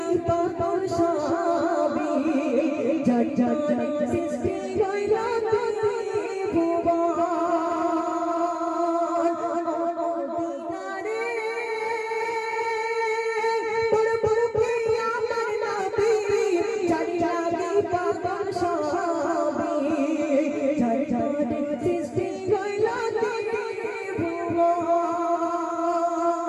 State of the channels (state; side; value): identical; both; correlation 1.00